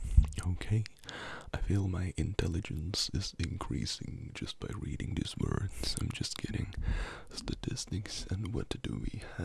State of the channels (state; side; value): identical; both; correlation 1.00